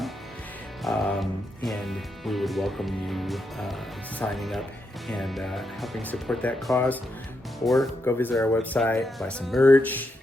and we would welcome you signing up and helping support that cause. Or go visit our website, buy some merch,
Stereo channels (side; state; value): both; normal; correlation 0.83